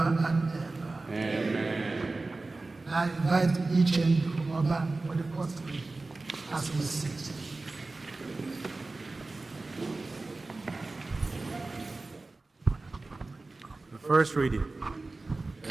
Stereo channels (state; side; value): quieter; left; 3.4 dB